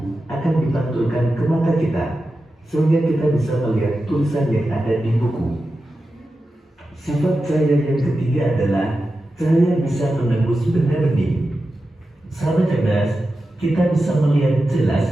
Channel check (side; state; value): both; normal; correlation 0.92